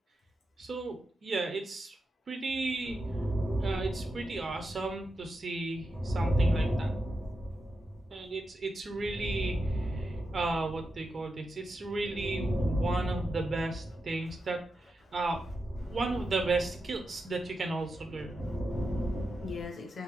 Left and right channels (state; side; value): normal; both; correlation 0.88